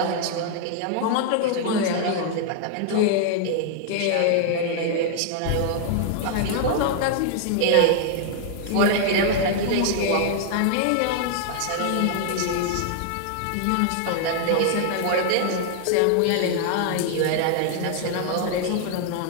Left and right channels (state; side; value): different; both; correlation 0.00